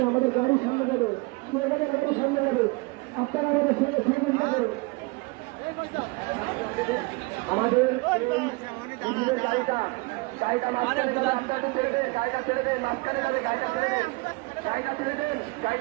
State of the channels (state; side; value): quieter; left; 26.5 dB